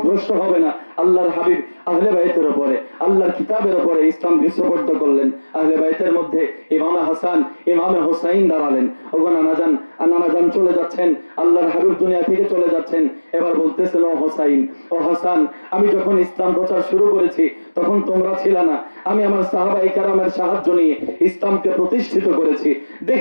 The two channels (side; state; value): both; inverted; correlation -1.00